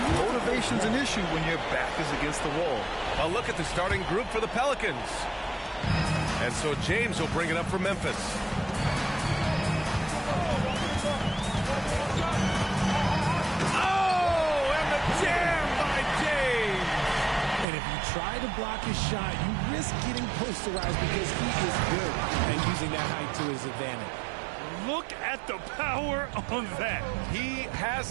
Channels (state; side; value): drops out; left; at 17.7 s